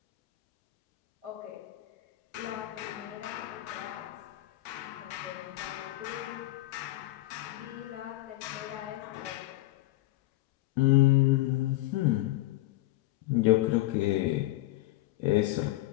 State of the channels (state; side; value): quieter; right; 17.9 dB